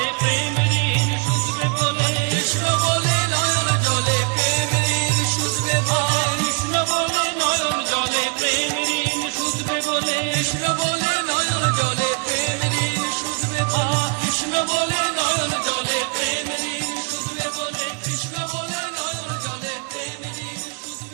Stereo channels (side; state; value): left; quieter; 38.1 dB